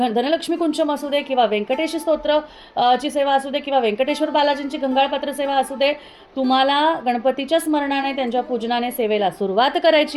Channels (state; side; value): identical; both; correlation 1.00